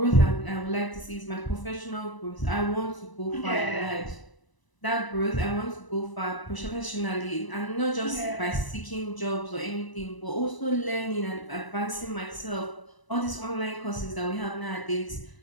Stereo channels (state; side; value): late; right; 1.0 ms